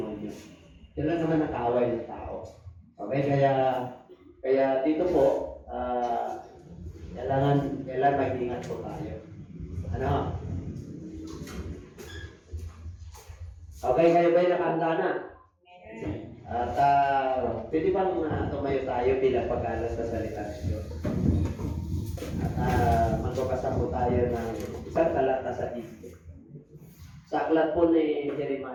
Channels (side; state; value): both; identical; correlation 1.00